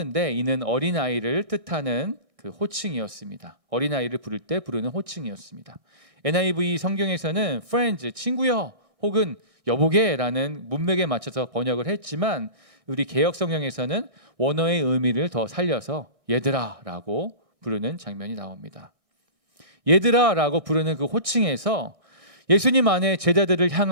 이는 어린아이를 뜻하는 그 호칭이었습니다. 어린아이를 부를 때 부르는 호칭이었습니다. NIV 성경에서는 friends, 친구여 혹은 여보게라는 문맥에 맞춰서 번역을 했지만 우리 개역 성경에서는 원어의 의미를 더 살려서 얘들아라고 부르는 장면이 나옵니다. 얘들아라고 부르는 그 호칭에서 예수님 안에 제자들을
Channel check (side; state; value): left; late; 1.6 ms